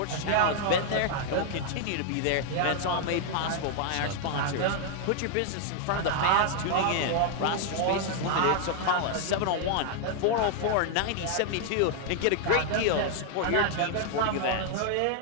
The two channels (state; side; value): different; both; correlation 0.00